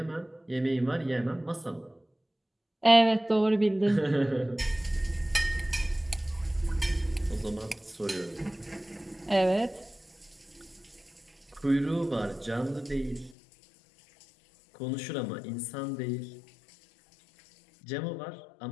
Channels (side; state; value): right; drops out; at 13.4 s